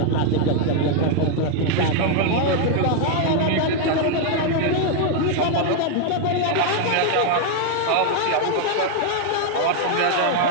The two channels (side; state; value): both; different; correlation 0.00